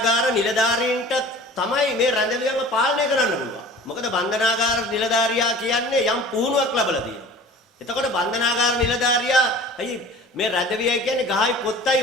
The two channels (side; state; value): both; normal; correlation 0.43